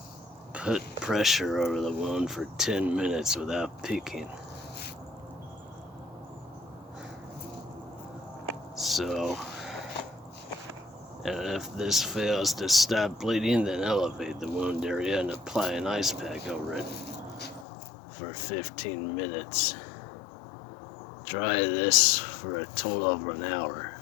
put pressure over the wound for 10 minutes without peeking. So, and if this fails to stop bleeding, then elevate the wound area and apply an ice pack over it for 15 minutes. Try this for a total of an hour.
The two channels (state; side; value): drops out; right; at 17.7 s